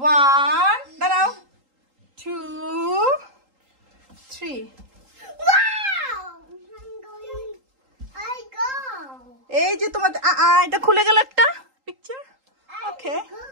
1 দাঁড়াও, 2 3। এই যে তোমার এটা খুলে গেল একটা picture. Okay,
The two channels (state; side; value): late; left; 3.8 ms